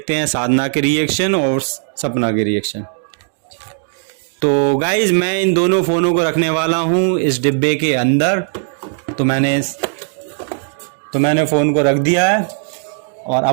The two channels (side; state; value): left; silent; 68 dB below the other